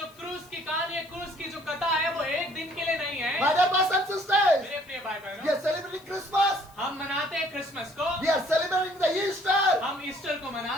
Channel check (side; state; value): left; noise; hiss, 27 dB below the sound